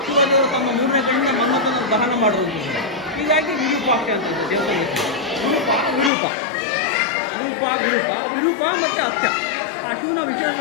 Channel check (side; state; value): right; drops out; at 6.1 s